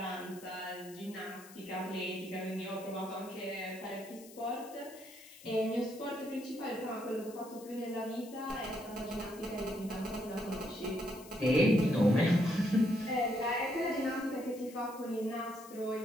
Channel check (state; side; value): noise; left; hiss, 19 dB below the sound